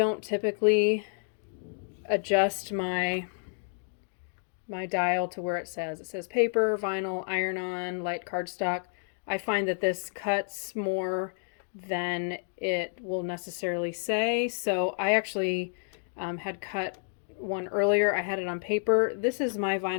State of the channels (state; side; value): silent; right; digital silence